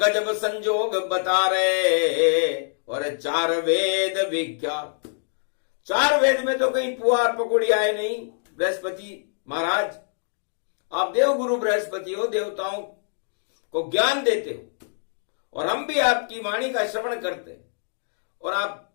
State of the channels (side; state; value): right; silent; digital silence